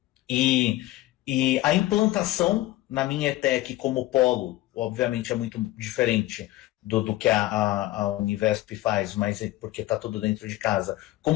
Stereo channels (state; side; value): quieter; right; 16.6 dB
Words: E a implantação na minha ETEC como polo, obviamente é muito diferente do que a Univesp faz, mas porque está tudo dentro de casa.